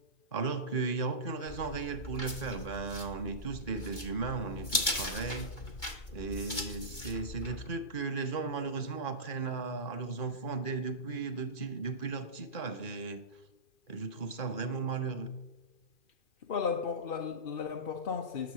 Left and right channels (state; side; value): late; right; 2.2 ms